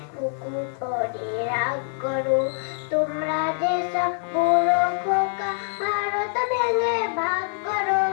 কুকুর পরে রাগ করো তোমরা যে সব পুরো খোকা ভারত ভেঙে ভাগ করো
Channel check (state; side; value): silent; right; digital silence